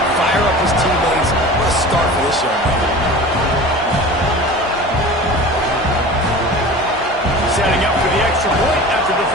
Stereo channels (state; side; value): normal; both; correlation 0.37